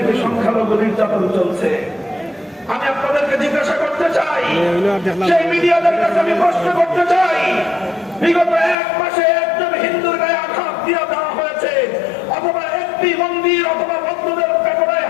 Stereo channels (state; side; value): drops out; right; at 8.8 s